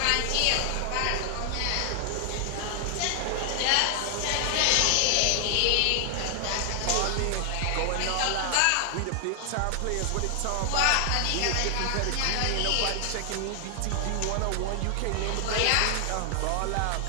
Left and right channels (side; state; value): both; different; correlation 0.00